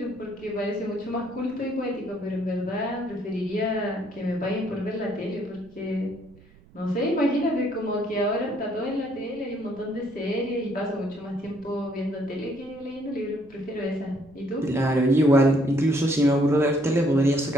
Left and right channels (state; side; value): noise; right; rumble, 25 dB below the sound